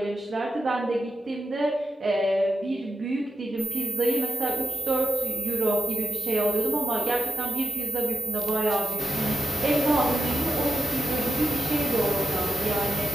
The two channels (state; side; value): normal; both; correlation 0.92